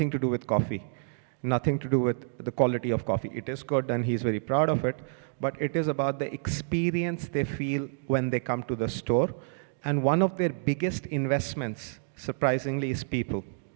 to do with coffee, nothing to do with the quality of coffee. It is good and he's very proud of it, but it is about the experience they feel when they come to the store. And one of their biggest investments, surprisingly, is people.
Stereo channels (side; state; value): left; silent; digital silence